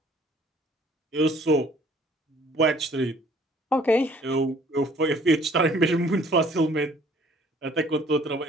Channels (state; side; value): normal; both; correlation 0.57